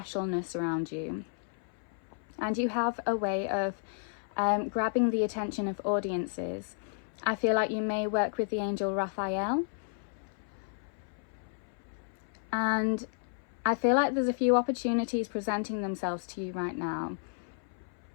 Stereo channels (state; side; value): silent; right; 56 dB below the other